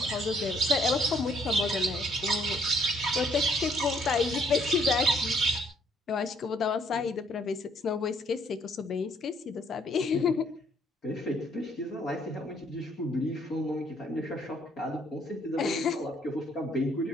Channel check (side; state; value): both; normal; correlation 0.66